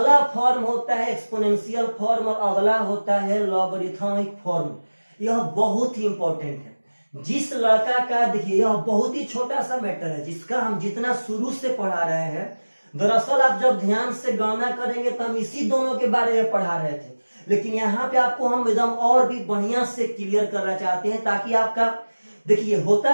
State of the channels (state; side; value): inverted; both; correlation -1.00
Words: फॉर्म होता है एक्सपोनेंशियल फॉर्म और अगला होता है लॉगरिथमिक फॉर्म। यह बहुत ही इंपॉर्टेंट है। जिस लड़का का, देखिए यह बहुत ही छोटा सा मैटर है जिसका हम जितना शुरू से पढ़ा रहे हैं, दरअसल आप जब ध्यान से गणना करेंगे तो हम इसी दोनों के बारे में पढ़ा रहे थे, लेकिन यहाँ पे आपको हम एकदम और भी बढ़िया से क्लियर करना चाहते हैं, ताकि आपका, देखिए